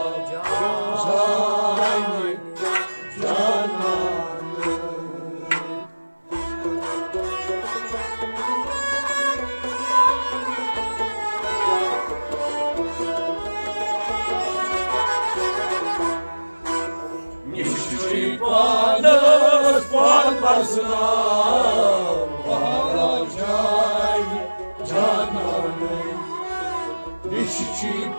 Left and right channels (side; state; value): both; inverted; correlation -1.00